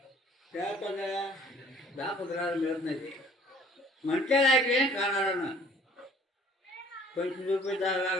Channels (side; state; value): both; normal; correlation 0.54